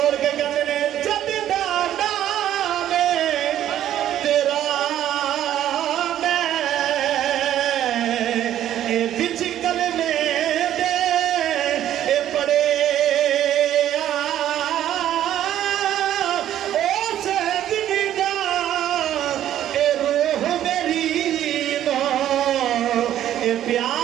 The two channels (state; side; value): quieter; left; 11.7 dB